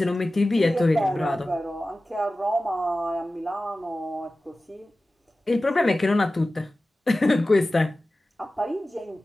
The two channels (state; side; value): normal; both; correlation 0.96